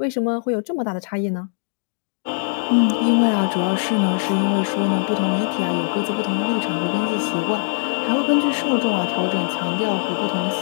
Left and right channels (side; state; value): right; silent; digital silence